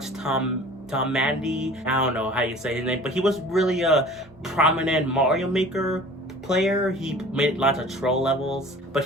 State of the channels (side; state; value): both; normal; correlation 0.45